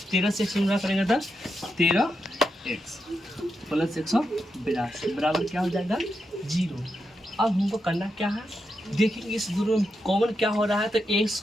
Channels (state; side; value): normal; both; correlation 0.85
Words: से एक्स गुना करेंगे तो 13x प्लस 182 बराबर क्या हो जाएगा 0। अब हमको करना क्या है, देखिए इस दोनों में कॉमन क्या हो रहा है, तो x